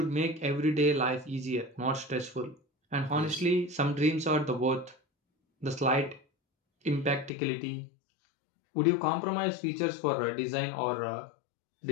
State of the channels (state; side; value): drops out; right; at 7.3 s